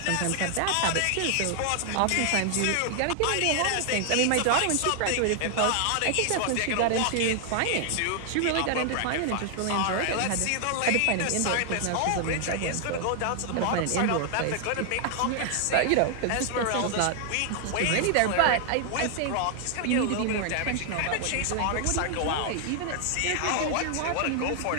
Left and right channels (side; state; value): both; different; correlation 0.00